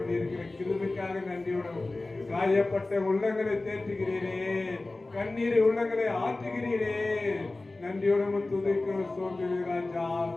கிருபைக்காக நன்றியோடும். காயப்பட்ட உள்ளங்களை தேற்றுகிறீரே, கண்ணீரை உள்ளங்களை ஆற்றுகிறீரே, நன்றியோடும் துதிக்கிறோம் சோதரி ராஜா.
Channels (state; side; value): quieter; right; 3.1 dB